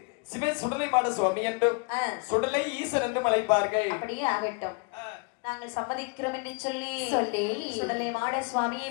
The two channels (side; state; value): right; quieter; 32.2 dB